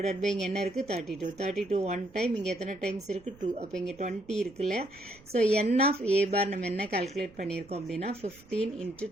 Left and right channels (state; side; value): noise; right; rumble, 25 dB below the sound